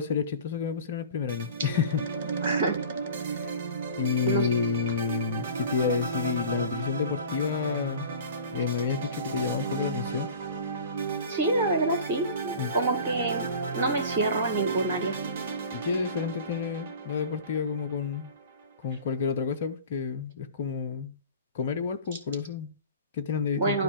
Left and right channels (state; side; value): inverted; both; correlation -0.40